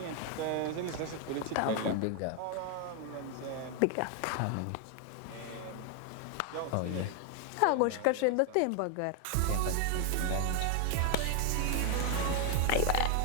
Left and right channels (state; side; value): different; both; correlation 0.00